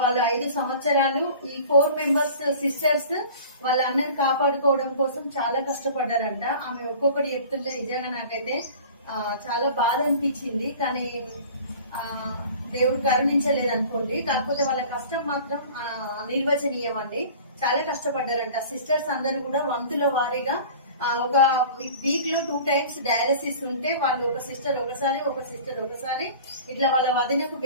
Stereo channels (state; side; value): inverted; both; correlation -0.43